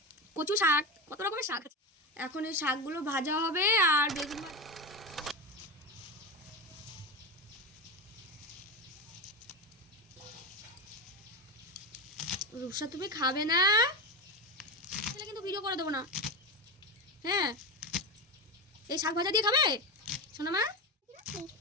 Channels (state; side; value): normal; both; correlation 0.18